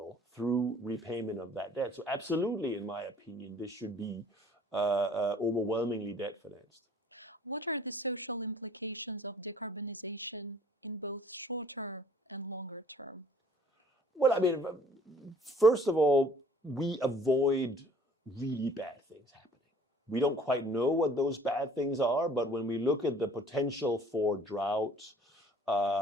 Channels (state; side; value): normal; both; correlation 0.54